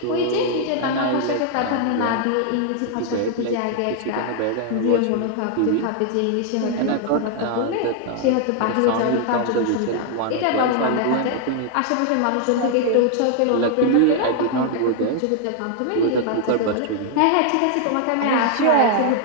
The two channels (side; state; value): both; different; correlation 0.00